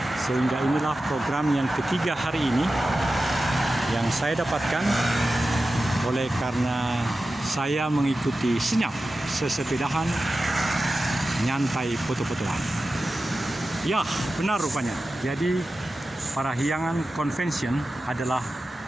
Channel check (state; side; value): normal; both; correlation 0.94